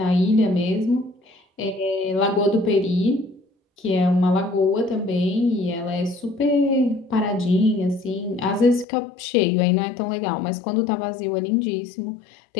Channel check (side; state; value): right; drops out; at 8.8 s